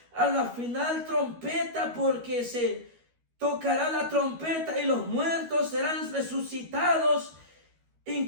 a la final trompeta, porque se tocará la trompeta y los muertos serán resucitados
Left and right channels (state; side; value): late; left; 13 ms